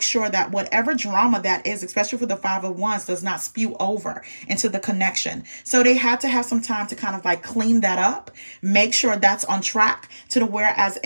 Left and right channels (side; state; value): both; inverted; correlation -1.00